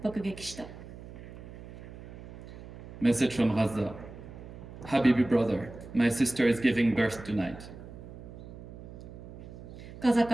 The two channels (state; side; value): noise; right; hum, 14 dB below the sound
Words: 爆撃した。Message from Gaza. Habibi brother, my sister is giving birth tonight. ガザ